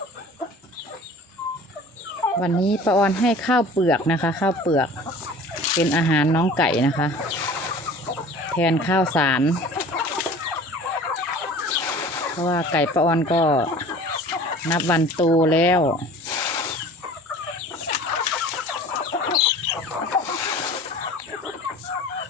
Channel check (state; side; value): normal; both; correlation 0.44